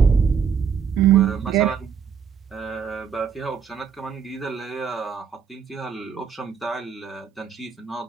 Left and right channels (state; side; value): quieter; left; 6.8 dB